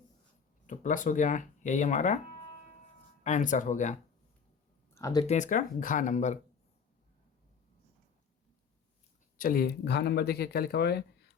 तो प्लस हो गया, यही हमारा आंसर हो गया। अब देखते हैं इसका घा नंबर। चलिए घा नंबर देखिए क्या लिखा हुआ है,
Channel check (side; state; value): right; quieter; 6.2 dB